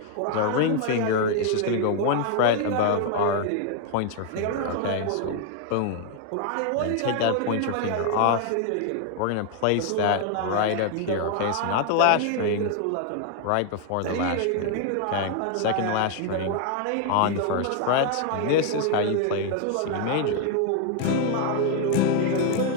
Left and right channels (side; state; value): both; different; correlation 0.00